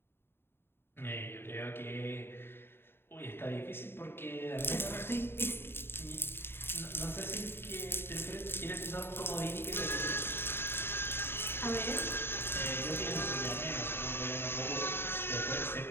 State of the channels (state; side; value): late; right; 0.11 ms